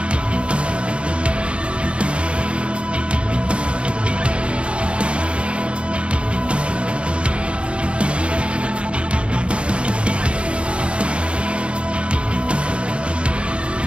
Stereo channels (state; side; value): late; left; 0.058 ms